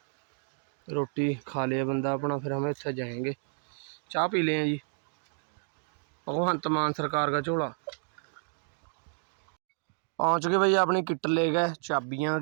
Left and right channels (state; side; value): silent; left; 57 dB below the other